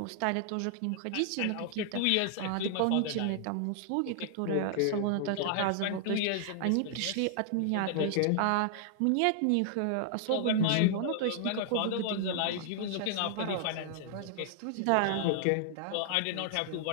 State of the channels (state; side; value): different; both; correlation -0.01